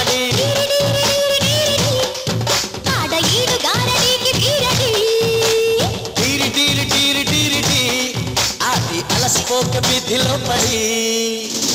టీరి టీరి టీరి టీరి టీ ఆటి అలసిపోక వీధిలో పడి.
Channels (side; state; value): both; identical; correlation 1.00